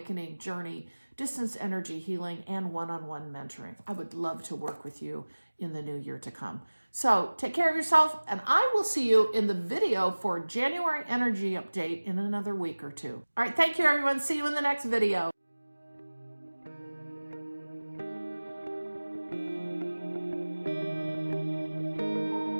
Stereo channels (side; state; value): both; inverted; correlation -1.00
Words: journey, distance energy healing, and one-on-one mentoring. I would love to work with you in the new year to come. So take care of yourself, and I will see you in the video for January energy update in another week or 2. All right, thank you, everyone. See you in the next video.